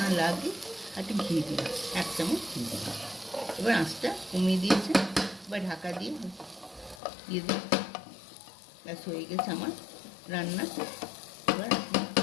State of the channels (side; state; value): right; drops out; at 7.0 s